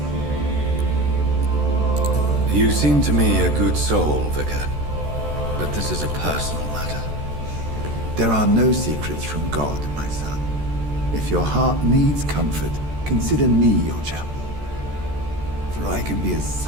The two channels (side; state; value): left; late; 14 ms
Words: You seem to me a good soul, Vicar. But this is a personal matter. There are no secrets from God, my son. If your heart needs comfort, consider me your chapel. For I can be as